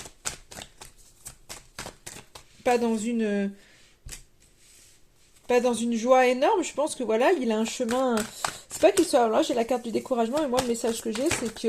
pas dans une... pas dans une joie énorme. Je pense que voilà, il a un chemin... C'est pas qu'il soit... Là, j'ai la carte du découragement, et moi, le message que j'ai, c'est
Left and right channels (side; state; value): both; identical; correlation 1.00